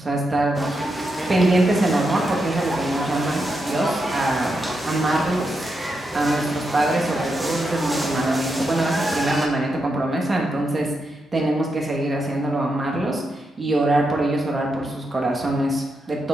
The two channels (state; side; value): normal; both; correlation 0.84